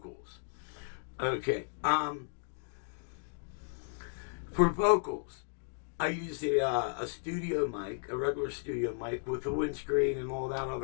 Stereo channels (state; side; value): silent; right; digital silence